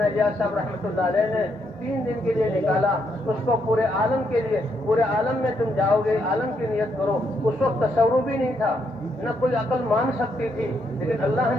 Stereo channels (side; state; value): both; normal; correlation 0.76